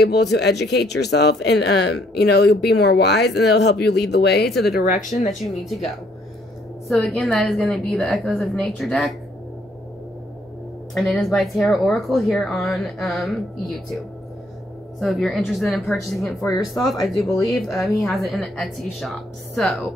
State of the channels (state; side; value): normal; both; correlation 0.67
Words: to educate yourself, and you know, you'll be more wise, and it'll help you lead the way to the direction that you need to go. So again, that is going to be the Echoes of Nature deck. And it is by Tarot Oracle here on YouTube. So if you're interested in purchasing it for yourself, I do believe he has it in the Etsy shop.